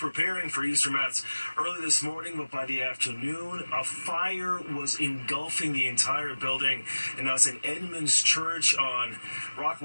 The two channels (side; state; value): both; inverted; correlation -1.00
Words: for Easter Mass early this morning, but by the afternoon, a fire was engulfing the entire building. And now St. Edmund's Church on